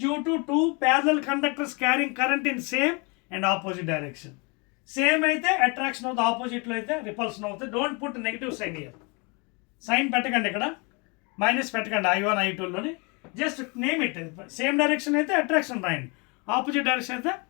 due to 2 parallel conductors carrying current in same and opposite direction. Same అయితే attraction of the opposite లో అయితే repulsion అవుతుంది. Don't put negative sign here. Sign పెట్టకండి, ఇక్కడ మైనస్ పెట్టకండి I1 I2 లోని, just name it. Same direction అయితే attraction రాయండి, ఆపోజిట్ డైరెక్షన్ అయితే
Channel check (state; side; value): quieter; right; 30.8 dB